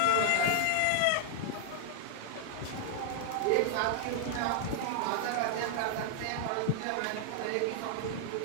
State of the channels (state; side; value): different; both; correlation -0.01